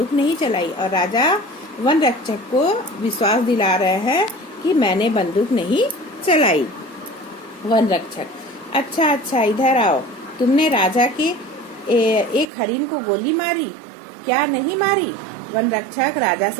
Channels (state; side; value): drops out; left; at 12.5 s